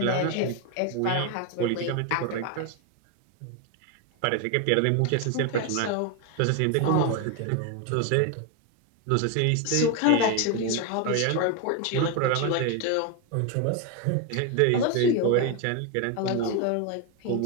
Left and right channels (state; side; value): different; both; correlation 0.02